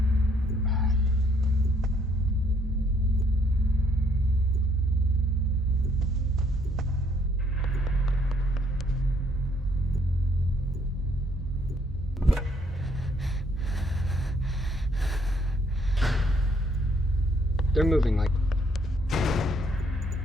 They're moving like...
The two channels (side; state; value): both; normal; correlation 0.68